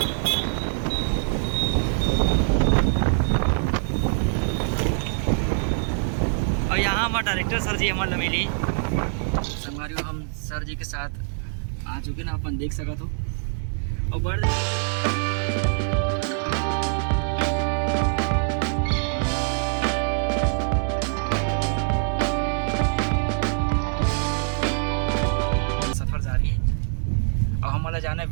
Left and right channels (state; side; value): silent; left; 62 dB below the other